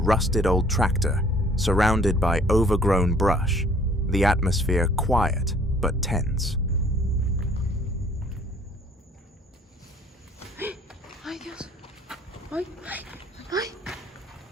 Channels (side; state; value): both; normal; correlation 0.57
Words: old tractor, surrounded by overgrown brush, the atmosphere quiet but tense. Ay, Dios. Ay, ay, ay.